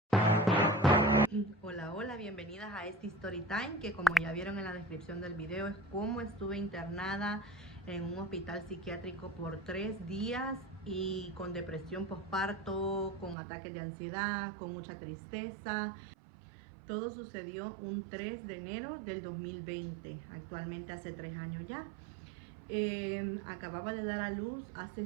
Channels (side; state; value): left; drops out; at 13.4 s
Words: Hola, hola, bienvenidas a este Story Time, que como ya vieron en la descripción del video es cómo estuve internada en un hospital psiquiátrico por 3 días y con depresión postparto, con ataques de ansiedad, con mucha tristeza. Todo sucedió un 3 de enero del 2020, actualmente hace 3 años ya. Acababa de dar a luz